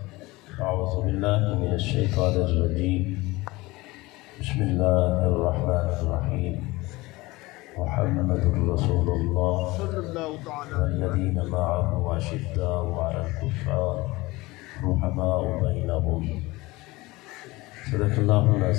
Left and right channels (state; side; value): quieter; right; 21.1 dB